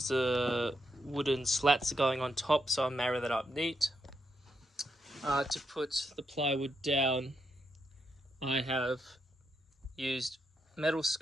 the wooden slats are going on top, so I'll marry that up neat. To put the plywood down, I have used metal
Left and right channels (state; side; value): normal; both; correlation 0.81